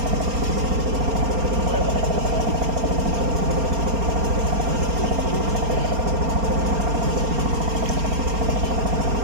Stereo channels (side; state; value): left; late; 4.3 ms